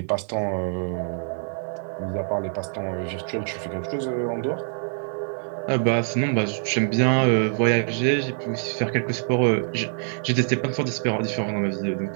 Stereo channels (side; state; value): left; silent; 62 dB below the other